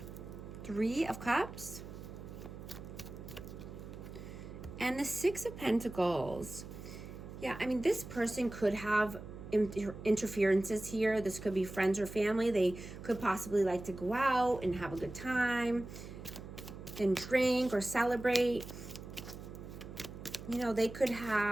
Three of Cups. And the Six of Pentacles. Yeah, I mean, this person could have interferences here. This could be friends or family. They could possibly like to go out and have a good time and drink or celebrate. You know, they could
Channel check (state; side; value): noise; right; hum, 12 dB below the sound